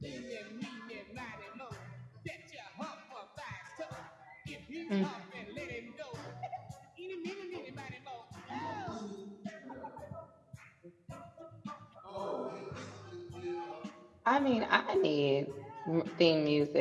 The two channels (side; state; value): both; identical; correlation 1.00